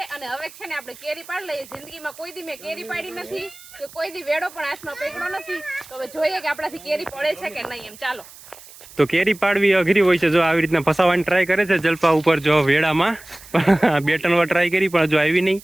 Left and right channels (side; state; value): right; noise; hiss, 20 dB below the sound